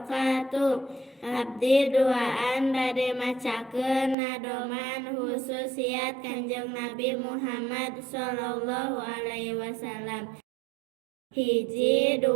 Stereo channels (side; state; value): left; drops out; at 4.2 s